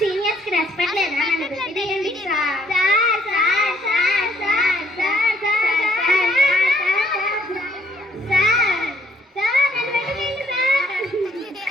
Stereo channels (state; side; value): normal; both; correlation 0.65